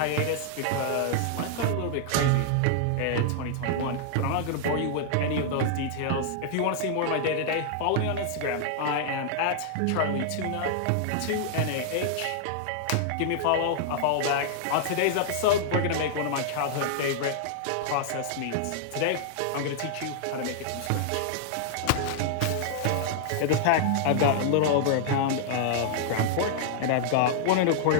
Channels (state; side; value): different; both; correlation -0.01